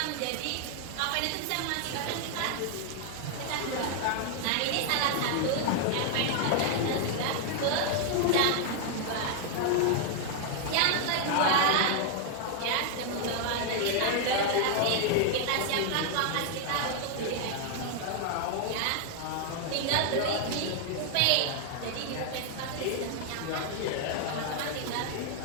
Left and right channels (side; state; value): both; different; correlation 0.00